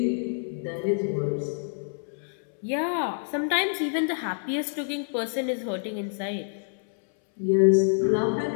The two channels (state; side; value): silent; right; 60 dB below the other